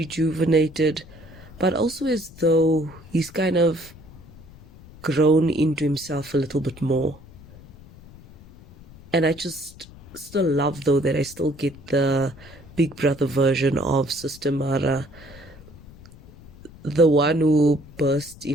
but also as though he's kind of grown into himself a little bit more. And I just still love, though, that I still get the Big Brother version of Sis Tamara, the one who bursts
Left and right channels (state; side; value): noise; left; rumble, 21 dB below the sound